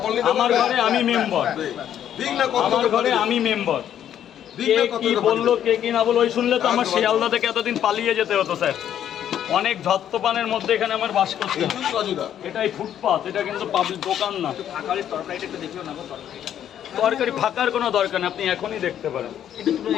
নিতে আমার ঘরে আমি মেম্বার, ঠিক না? আমার ঘরে আমি মেম্বার। কে কি বললো, কে কি না বললো, ওই শুনলে তো আমার শিয়ালদা থেকে এতদিন পালিয়ে যেতে হতো স্যার। অনেক ধত্তপানের মধ্যে এখানে আমার বাস করতে হয়। এটাই ফুটপাথ, এটা কিন্তু পাবলিক দোকান না। তরকারি ফাঁকার কোনো দরকার নেই, আপনি এখনই দেখতে পারেন।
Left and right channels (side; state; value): right; quieter; 10.2 dB